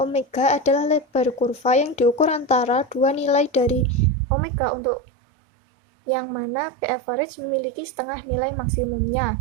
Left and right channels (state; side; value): drops out; left; at 4.1 s